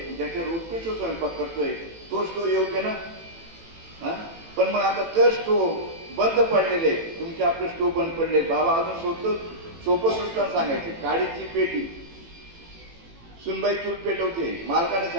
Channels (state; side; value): late; left; 18 ms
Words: ज्याच्यावर उत्कृष्ट स्वयंपाक करतोय, तो स्टो योग्य ना? पण मग आता तर स्टोव बंद पडलेले, तुमचे आपले स्टोव बंद पडले. बाबा अजून सोपं दृष्टांत सांगायचे. काडीची पेटी, सुनबाई चूल पेटवते. मालकाने